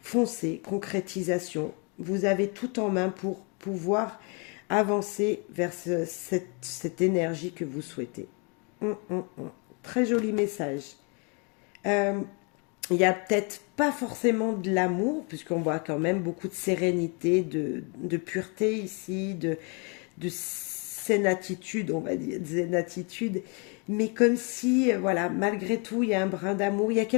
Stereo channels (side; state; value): right; quieter; 34.4 dB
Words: foncez, concrétisation. Vous avez tout en main pour pouvoir avancer vers cette énergie que vous souhaitez. Très joli message. Il n'y a peut-être pas forcément de l'amour, puisqu'on voit quand même beaucoup de sérénité, de pureté ici, de zénatitude, on va dire, zénatitude, mais comme si, voilà, malgré tout, il y a un brin d'amour, il y a